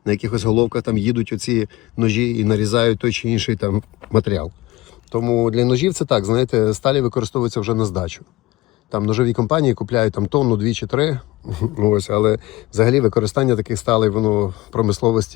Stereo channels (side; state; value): right; quieter; 19.2 dB